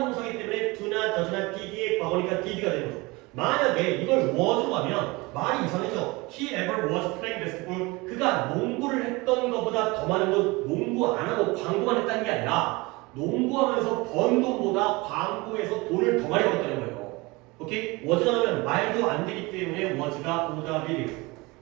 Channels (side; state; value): left; quieter; 24.0 dB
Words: 동사이기 때문에 do나 does나 did의 과거니까 did가 되는 거죠. 만약에 이걸 was로 가면 말이 이상해져. He ever was playing basketball. 그가 농구를 했던 것보다 더 많은 건 농구 안 하고 광고만 했다는 게 아니라 농구하면서 번 돈보다 광고에서 돈을 더 많이 벌었다는 거예요. 오케이? was가 나오면 말도 안 되기 때문에 was가 오답이에요.